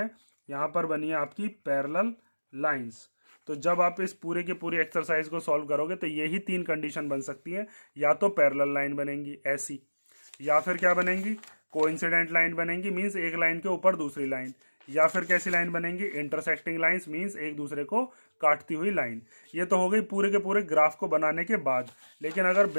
यहाँ पर बनी है आपकी पैरेलल लाइंस। तो जब आप इस पूरे के पूरे एक्सरसाइज को सॉल्व करोगे तो यही 3 कंडीशन बन सकती है, या तो पैरेलल लाइन बनेंगी ऐसी, या फिर क्या बनेंगी कोइंसिडेंट लाइन बनेंगी, मींस एक लाइन के ऊपर दूसरी लाइन, या फिर कैसी लाइन बनेंगी इंटरसेक्टिंग लाइंस, मींस एक दूसरे को काटती हुई लाइन। ये तो हो गई पूरे के पूरे ग्राफ को बनाने के बाद। लेकिन अगर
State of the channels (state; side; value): inverted; both; correlation -1.00